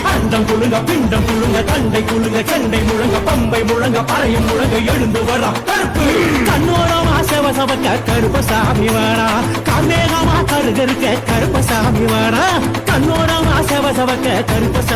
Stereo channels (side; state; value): both; identical; correlation 1.00